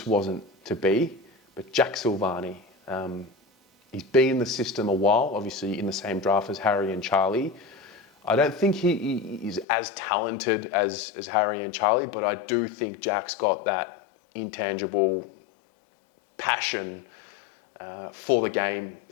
wasn't to be. But Jack Sylvani, he's been in the system a while, obviously in the same draft as Harry and Charlie. I don't think he is as talented as Harry and Charlie, but I do think Jack's got that intangible passion for the game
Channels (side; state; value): right; drops out; at 9.7 s